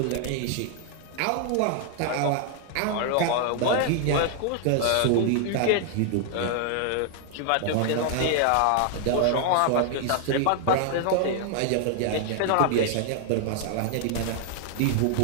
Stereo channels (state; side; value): different; both; correlation 0.00